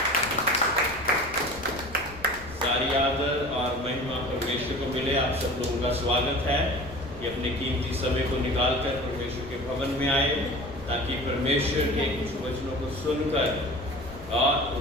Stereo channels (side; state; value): left; noise; rumble, 17 dB below the sound